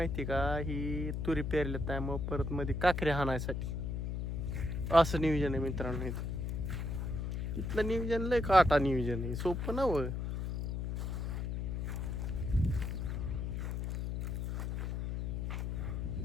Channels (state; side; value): noise; left; hum, 2 dB below the sound